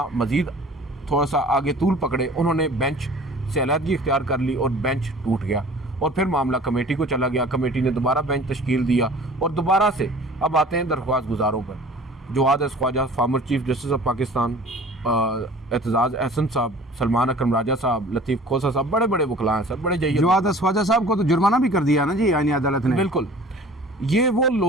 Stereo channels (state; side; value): normal; both; correlation 0.46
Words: मज़ीद थोड़ा सा आगे तूल पकड़े, उन्होंने बेंच से अलहदगी इख्तियार कर ली और बेंच टूट गया और फिर मामला कमेटी को चला गया। कमेटी ने दोबारा बेंच तश्कील दिया और दोबारा से अब आते हैं दरख्वास्त गुजारों पर। Jawad Khawaja, former chief justice of Pakistan, Aitzaz Ahsan साहब, सलमान अकरम राजा साहब, लतीफ़ खोसा साहब, बड़े बड़े वकला हैं सर, बड़े जय्यद। जवाद ख्वाजा साहब को तो जुर्माना भी कर दिया ना जी आईनी अदालत ने। बिल्कुल, ये वो